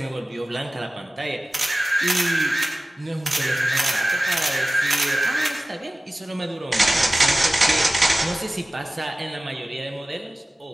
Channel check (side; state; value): both; normal; correlation 0.96